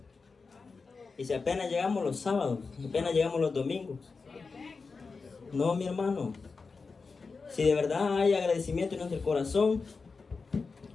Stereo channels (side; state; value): right; quieter; 4.5 dB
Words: Y si apenas llegamos los sábados, apenas llegamos los domingos. No, mi hermano. Si de verdad hay agradecimiento en nuestro corazón,